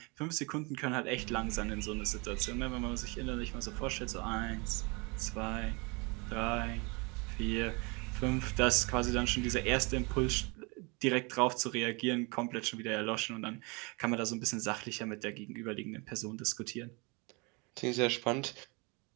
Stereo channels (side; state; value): left; quieter; 29.1 dB